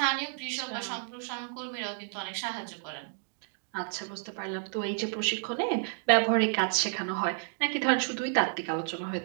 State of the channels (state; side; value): silent; left; 57 dB below the other